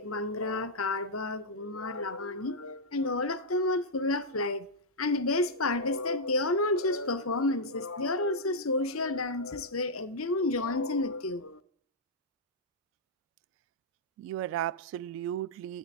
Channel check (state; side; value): normal; both; correlation -0.07